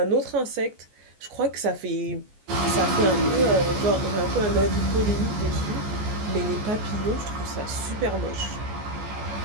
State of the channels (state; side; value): late; left; 14 ms